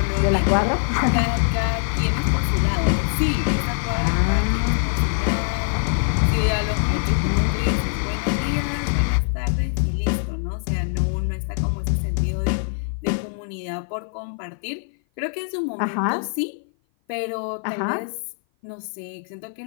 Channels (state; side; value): silent; right; 56 dB below the other